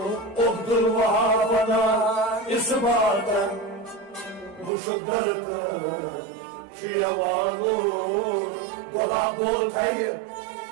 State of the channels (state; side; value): drops out; left; at 4.7 s